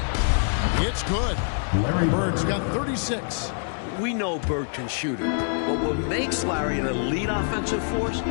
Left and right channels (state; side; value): silent; right; digital silence